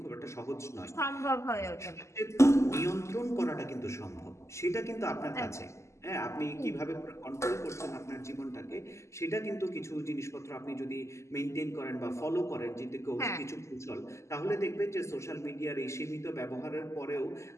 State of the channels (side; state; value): right; late; 0.13 ms